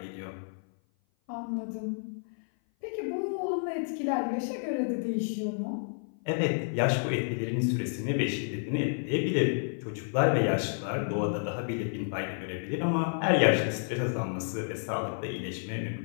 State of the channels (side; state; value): right; silent; 56 dB below the other